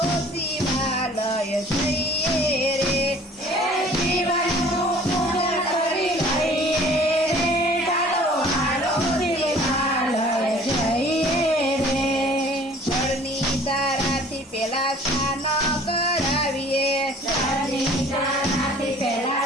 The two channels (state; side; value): normal; both; correlation 0.51